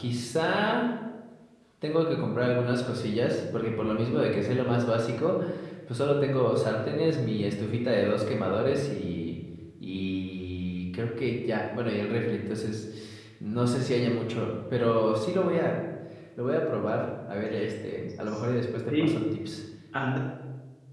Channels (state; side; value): identical; both; correlation 1.00